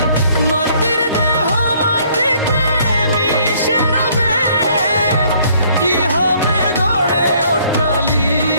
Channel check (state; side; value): inverted; both; correlation -0.62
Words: মাটির দেহ মাটিতে মিশে রবে, কি হবে গড়ে